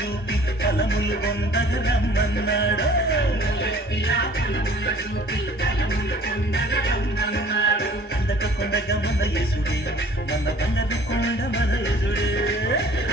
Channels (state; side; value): normal; both; correlation 0.51